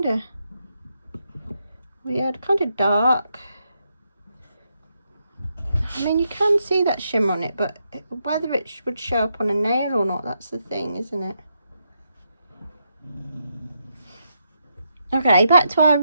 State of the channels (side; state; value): both; inverted; correlation -0.81